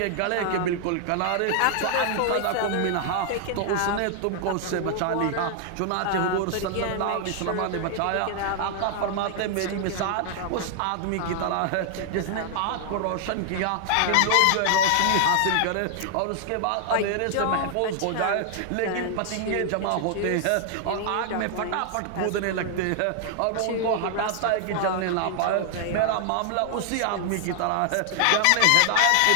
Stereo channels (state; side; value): different; both; correlation 0.00